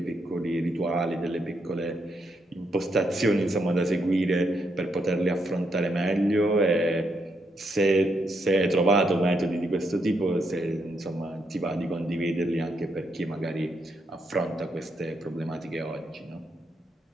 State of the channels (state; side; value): normal; both; correlation 0.78